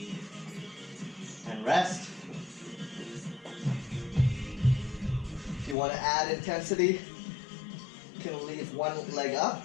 And rest. If you want to add intensity, you can leave one leg up.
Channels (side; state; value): right; drops out; at 5.8 s